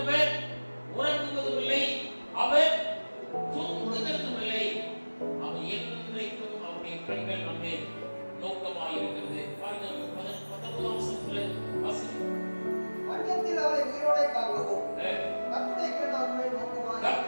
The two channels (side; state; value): both; inverted; correlation -1.00